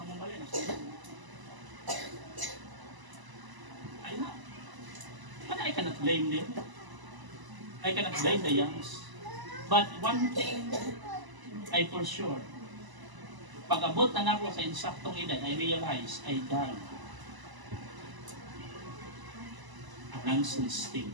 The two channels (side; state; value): left; late; 1.0 ms